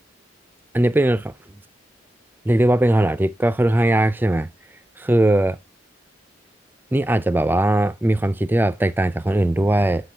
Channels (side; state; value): both; normal; correlation 0.92